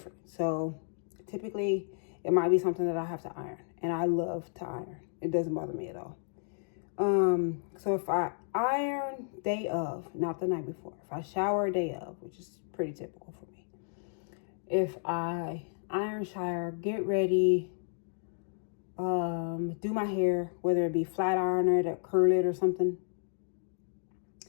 So typically it might be something that I have to iron. And I love to iron. It doesn't bother me at all. So if I iron day of, not the night before. If I shower day of, which is pretty typical for me. If I iron, shower, get ready, do my hair, whether it be flat iron it or curl it or something.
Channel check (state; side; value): silent; right; digital silence